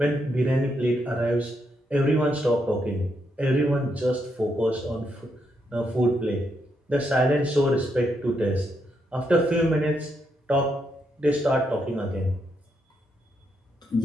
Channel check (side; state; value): both; normal; correlation 0.79